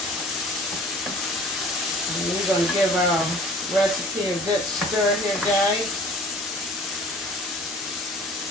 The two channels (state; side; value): normal; both; correlation 0.48